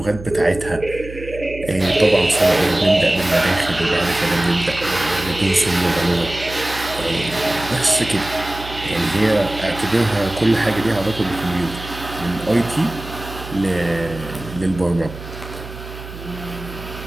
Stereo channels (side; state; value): right; noise; hum, 13 dB below the sound